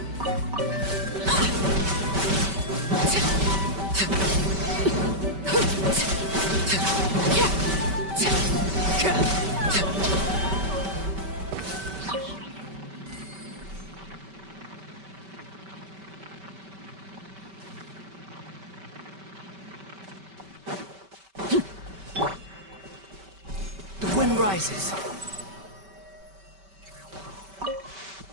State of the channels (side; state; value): left; late; 5.2 ms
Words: The wind rises.